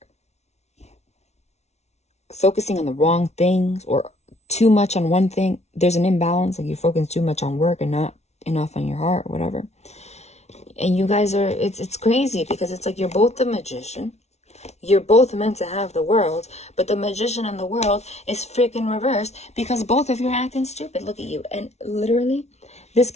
focusing on the wrong things or too much on one thing. There's an imbalance, like you're focusing too much on work and not enough on your heart or whatever. And you guys are, it's crazy because it's like you're both the magician. You're both meant to have the world, but the magician and the world is freaking reversed because both of you are acting stupid. Look at you. And literally, this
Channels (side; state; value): right; late; 0.32 ms